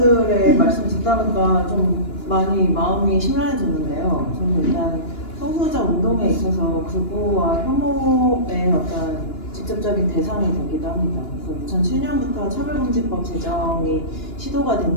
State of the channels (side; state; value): right; late; 2.9 ms